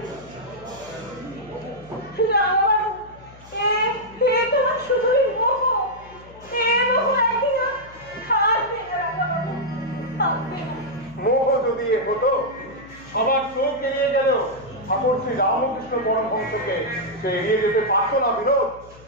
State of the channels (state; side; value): noise; left; hum, 21 dB below the sound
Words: শুধুই মোহ, মোহ একদিন থাকবে না। মোহ যদি এ হতো, সবার চোখ এড়িয়ে গেল ঠাকুর শ্রী রামকৃষ্ণ পরমহংসকে সে এড়িয়ে যেতে পারতো না বিনোদ।